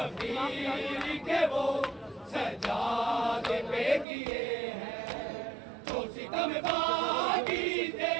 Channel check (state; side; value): drops out; left; at 4.0 s